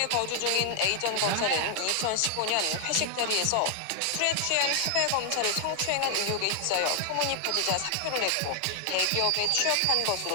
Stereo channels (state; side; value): different; both; correlation 0.00